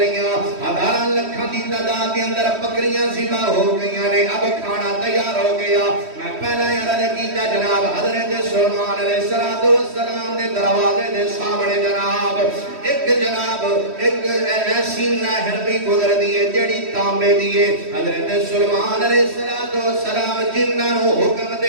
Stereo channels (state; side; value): late; left; 3.1 ms